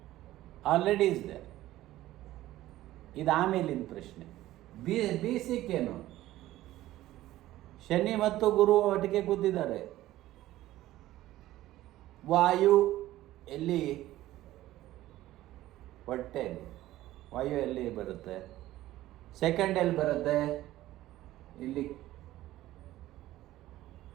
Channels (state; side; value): quieter; left; 15.2 dB